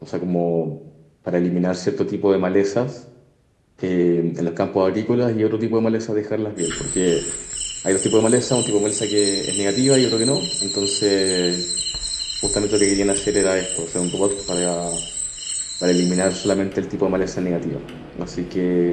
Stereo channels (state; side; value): identical; both; correlation 1.00